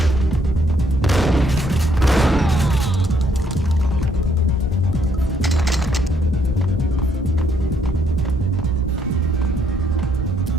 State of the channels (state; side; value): normal; both; correlation 0.70